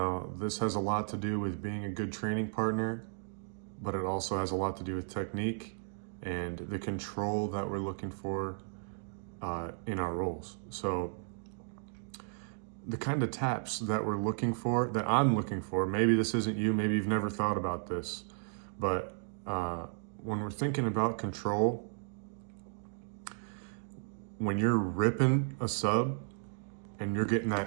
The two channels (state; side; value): silent; left; digital silence